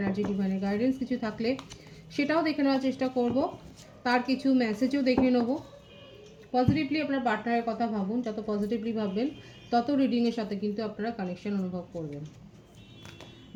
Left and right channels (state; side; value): identical; both; correlation 1.00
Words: ডিভাইনের গাইডেন্স কিছু থাকলে সেটাও দেখে নেওয়ার চেষ্টা করব। তার কিছু মেসেজও দেখে নেব। পজিটিভলি আপনার পার্টনারের কথা ভাবুন, যত পজিটিভলি ভাববেন তত রিডিংয়ের সাথে কিন্তু আপনারা কানেকশন অনুভব করবেন।